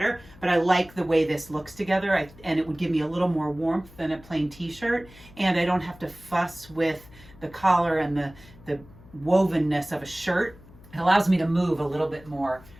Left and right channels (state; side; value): noise; left; hum, 22 dB below the sound